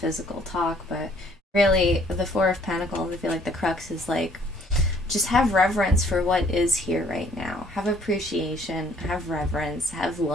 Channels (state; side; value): normal; both; correlation 0.61